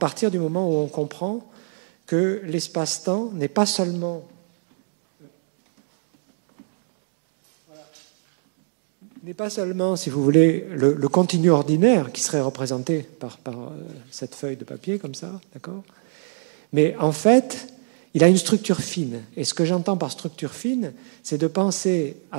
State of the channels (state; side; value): silent; left; digital silence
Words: du moment où on comprend que l'espace-temps n'est pas seulement n'est pas seulement, si vous voulez, le continu ordinaire qui serait représenté par cette feuille de papier, comme ça, d'accord? Mais en fait, il a une structure fine. Et ce que j'entends par structure fine, c'est de penser